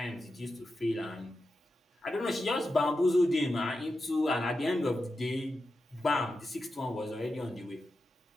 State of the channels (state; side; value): normal; both; correlation 0.90